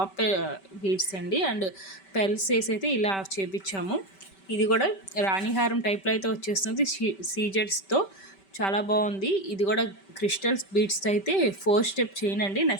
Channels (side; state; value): right; late; 5.2 ms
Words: బీడ్స్ అండి. అండ్ పెల్స్ వేసి అయితే ఇలా చేపించాము. ఇది కూడా రాణిహారం టైప్లో అయితే వచ్చేస్తుంది సీజెడ్స్తో. చాలా బాగుంది. ఇది కూడా క్రిస్టల్స్ బీడ్స్తో అయితే 4 స్టెప్ చైన్ అండి.